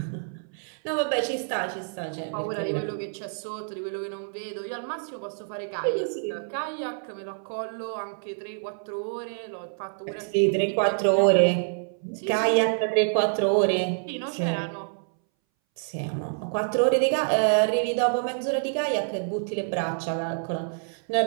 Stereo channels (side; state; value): left; silent; 60 dB below the other